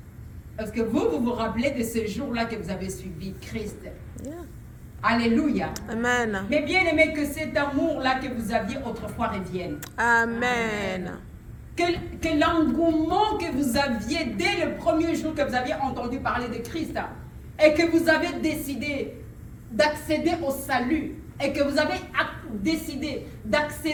Parce que vous rappelez de ce jour-là que vous avez suivi Christ. Yeah. Alléluia. Amen. Mais bien aimé, que cet amour-là que vous aviez autrefois revienne. Amen. Que l'engouement que vous aviez dès le premier jour que vous aviez entendu parler de Christ et que vous avez décidé d'accéder au salut et que vous avez décidé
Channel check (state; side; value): identical; both; correlation 1.00